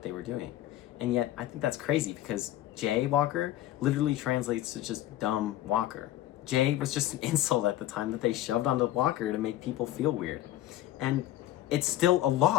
they were doing. And yet, I think that's crazy because jaywalker literally translates to just dumb walker. Jay was just an insult at the time that they shoved onto walker to make people feel weird. And it's still a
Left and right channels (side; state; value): right; quieter; 13.8 dB